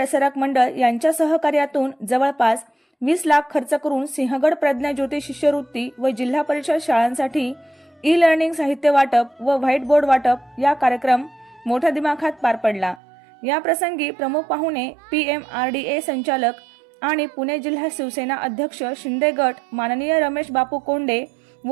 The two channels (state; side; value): drops out; left; at 13.0 s